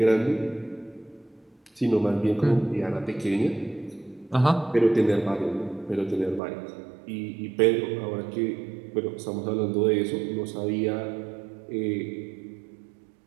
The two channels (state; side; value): drops out; left; at 6.4 s